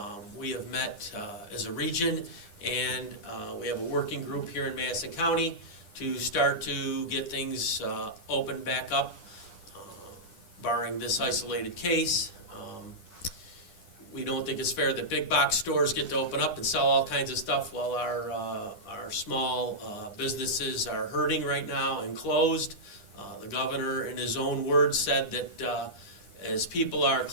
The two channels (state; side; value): late; right; 10 ms